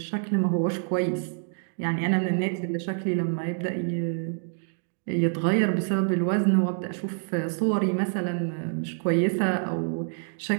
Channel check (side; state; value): left; silent; digital silence